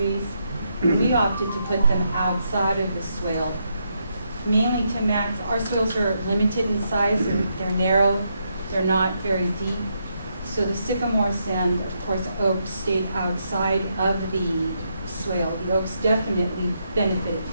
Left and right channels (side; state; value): both; inverted; correlation -0.79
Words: We opted to put them outside of the swale, mainly to max. Our swales are limited in size, they're narrow, they're not very deep. So the sycamores and, of course, oaks stayed outside of the swale. The oaks definitely benefited